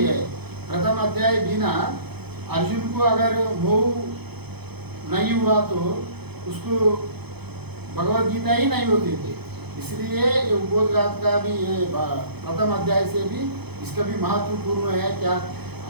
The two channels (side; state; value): left; late; 0.98 ms